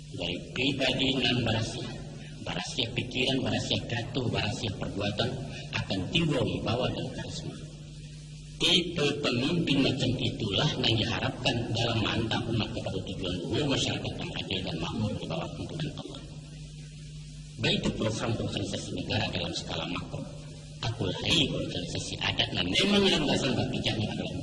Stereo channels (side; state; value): both; identical; correlation 1.00